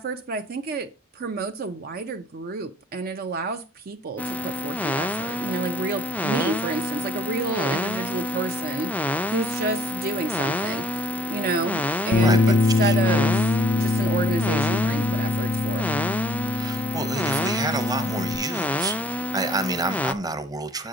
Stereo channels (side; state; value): both; normal; correlation 0.59